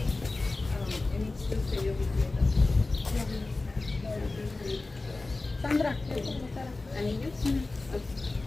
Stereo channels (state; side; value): quieter; right; 3.3 dB